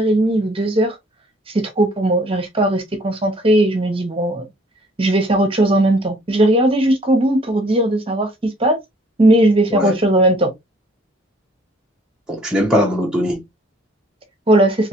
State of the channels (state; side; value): normal; both; correlation 0.59